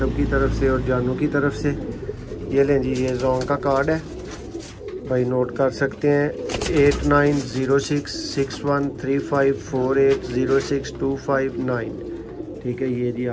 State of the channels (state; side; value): identical; both; correlation 1.00